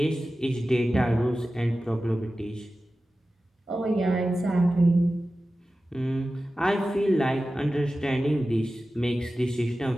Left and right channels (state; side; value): normal; both; correlation 0.95